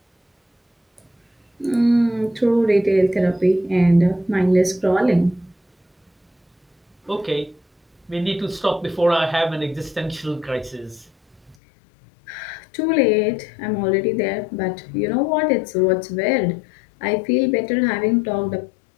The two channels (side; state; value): right; drops out; at 11.6 s